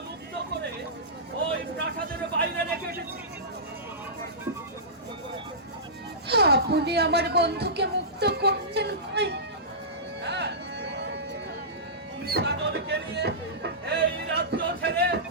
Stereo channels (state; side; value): normal; both; correlation -0.19